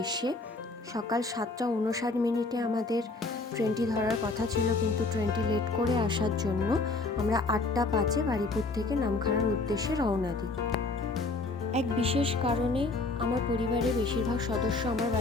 সকাল 7:59 আমাদের ট্রেনটি ধরার কথা ছিল, কিন্তু ট্রেনটি লেট করে আসার জন্য আমরা 8:05 বারুইপুর থেকে নামখানার উদ্দেশ্যে রওনা দিই। এক বিশেষ কারণে আমার পরিবারের বেশিরভাগ সদস্য আমার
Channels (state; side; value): quieter; right; 3.4 dB